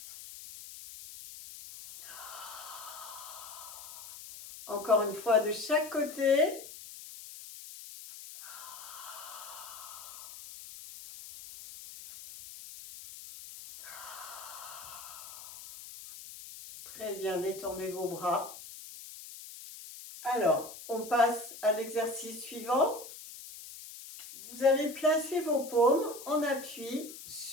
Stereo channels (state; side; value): noise; left; hiss, 14 dB below the sound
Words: Encore une fois de chaque côté. Très bien, détendez vos bras. Alors, on passe à l'exercice suivant. Vous allez placer vos paumes en appui